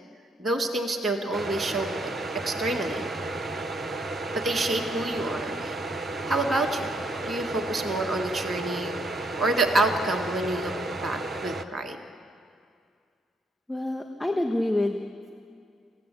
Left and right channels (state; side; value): normal; both; correlation 0.72